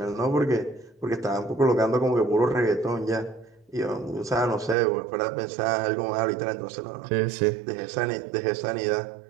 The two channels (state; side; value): drops out; left; at 4.8 s